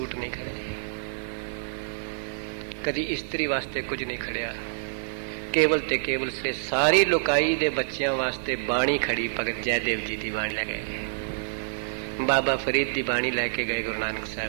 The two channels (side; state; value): left; silent; digital silence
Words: ਨਹੀਂ ਖੜੇ, ਕਦੀ ਇਸਤਰੀ ਵਾਸਤੇ ਕੁਝ ਨਹੀਂ ਖੜਿਆ। ਕੇਵਲ ਤੇ ਕੇਵਲ ਸੇ ਸਾਰੀ ਲੋਕਾਈ ਦੇ ਬੱਚਿਆਂ ਵਾਸਤੇ ਬਾਣੀ ਖੜੀ। ਭਗਤ ਜੈਦੇਵ ਜੀ ਦੀ ਬਾਣੀ ਲੈ ਗਏ, ਬਾਬਾ ਫਰੀਦ ਦੀ ਬਾਣੀ ਲੈ ਕੇ ਗਏ ਗੁਰੂ ਨਾਨਕ